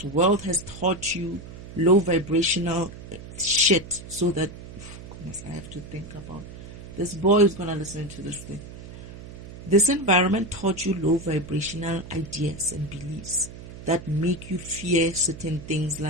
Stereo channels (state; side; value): noise; right; hum, 14 dB below the sound